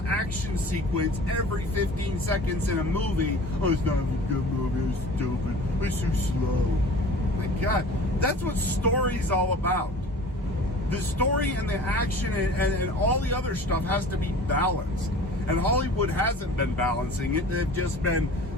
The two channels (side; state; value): both; normal; correlation 0.42